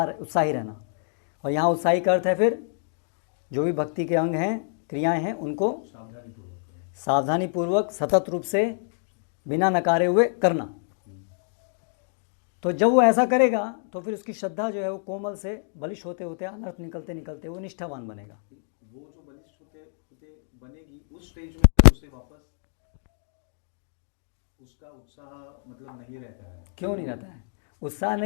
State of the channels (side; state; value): right; silent; digital silence